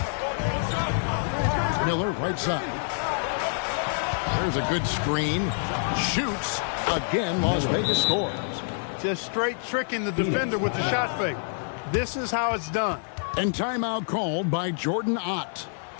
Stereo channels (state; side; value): silent; right; 57 dB below the other